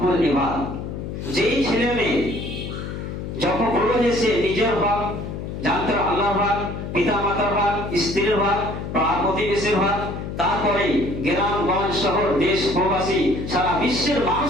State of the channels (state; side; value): noise; left; hum, 7 dB below the sound